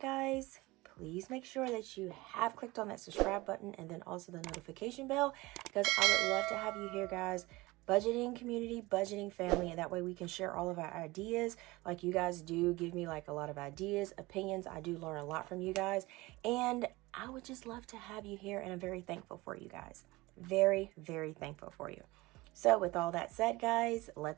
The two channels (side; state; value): left; quieter; 21.2 dB